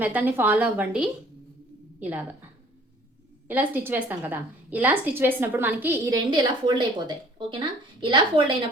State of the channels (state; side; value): normal; both; correlation 0.54